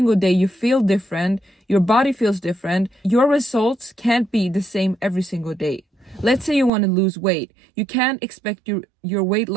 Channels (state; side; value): drops out; left; at 6.7 s